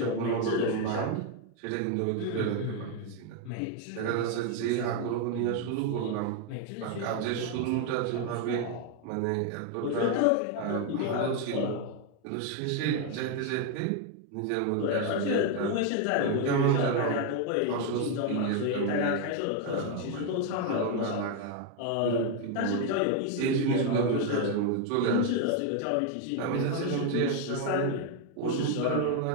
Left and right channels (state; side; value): different; both; correlation 0.01